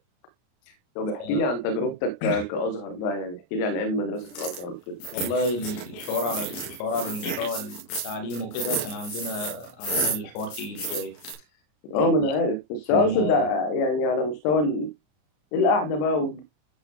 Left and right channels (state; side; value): late; right; 33 ms